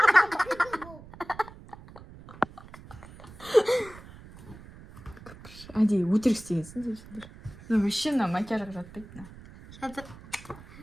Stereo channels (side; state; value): right; noise; rumble, 18 dB below the sound